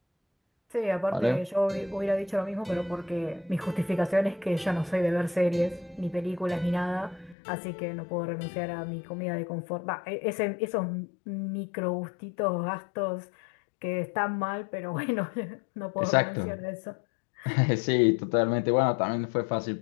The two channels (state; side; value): drops out; right; at 7.4 s